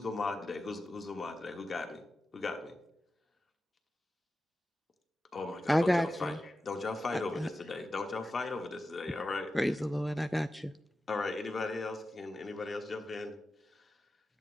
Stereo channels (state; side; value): normal; both; correlation 0.92